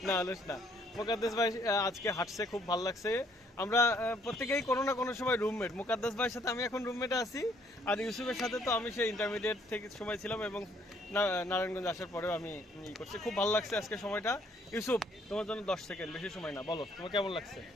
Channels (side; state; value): both; normal; correlation 0.65